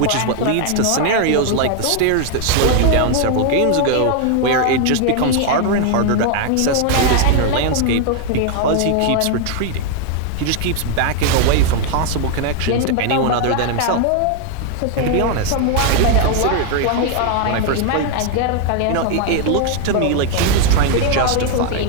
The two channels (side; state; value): both; different; correlation 0.00